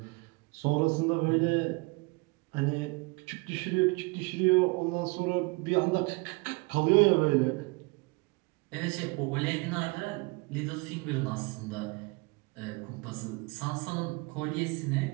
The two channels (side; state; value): left; quieter; 27.5 dB